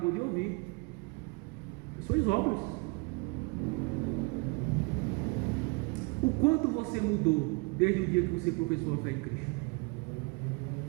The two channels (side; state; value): left; quieter; 29.5 dB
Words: de ouvir. As suas obras. O quanto você mudou desde o dia que você professou a fé em Cristo?